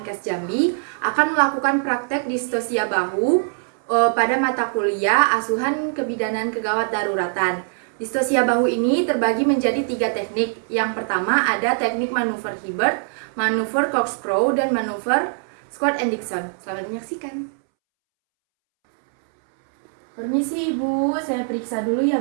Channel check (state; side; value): silent; left; 64 dB below the other